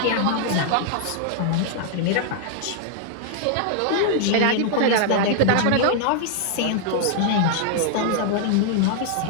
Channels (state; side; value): different; both; correlation -0.01